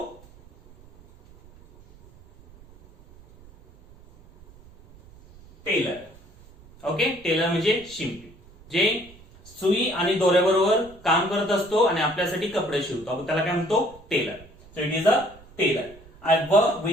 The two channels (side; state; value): right; noise; rumble, 24 dB below the sound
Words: टेलर. ओके, टेलर म्हणजे शिंपी, जे सुई आणि दोऱ्याबरोबर काम करत असतो आणि आपल्यासाठी कपडे शिवतो, आपण त्याला काय म्हणतो, tailor. So it is a tailor. I work